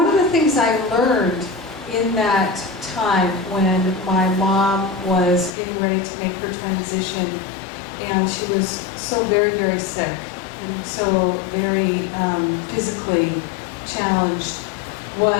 of the things I learned in that time when my mom was getting ready to make her transition, and she was so very, very sick and so very physically challenged,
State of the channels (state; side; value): drops out; right; at 5.6 s